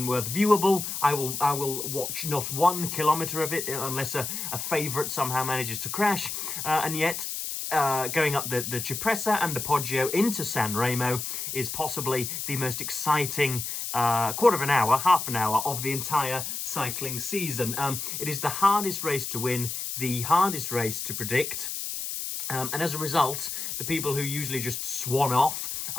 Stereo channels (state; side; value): noise; left; hiss, 4 dB below the sound